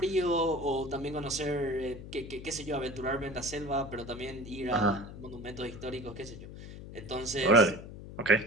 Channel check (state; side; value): noise; left; hum, 13 dB below the sound